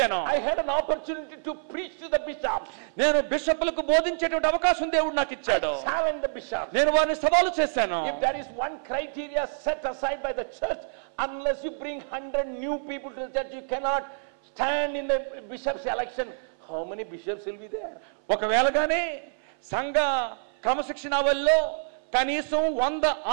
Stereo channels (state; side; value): silent; left; 60 dB below the other